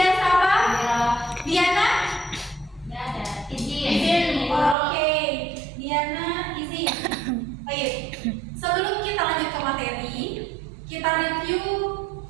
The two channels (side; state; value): left; drops out; at 4.8 s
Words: Safa. Hadir. Diana. Nggak ada. Izin. Oke, Diana izin. Baik. Sebelum kita lanjut ke materi, kita review